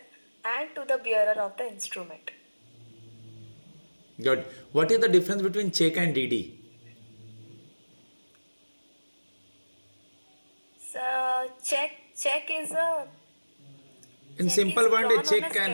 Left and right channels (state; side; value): inverted; both; correlation -1.00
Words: and to the bearer of the instrument. Good. What is the difference between check and DD? So check is a In check simple is word, a drawn check on a